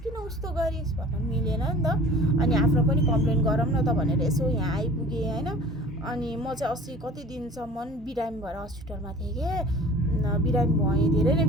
किन उस्तो गरिस् भन्न मिलेन नि त। अनि आफ्नो पनि कम्प्लेन गरौँ न त भनेर यसो यहाँ आइपुगेँ होइन। अनि म चाहिँ अस्ति कति दिनसम्म बिरामी भएर हस्पिटलमा थिएँ क्या, बिरामी भएँ, धेरै नै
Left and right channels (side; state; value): both; normal; correlation 0.44